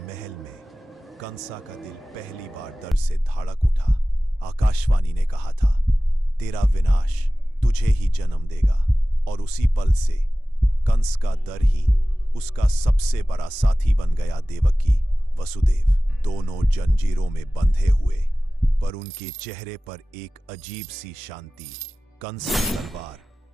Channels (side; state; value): both; normal; correlation 0.97